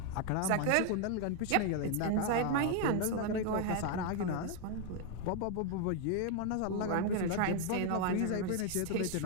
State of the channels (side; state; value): both; different; correlation 0.01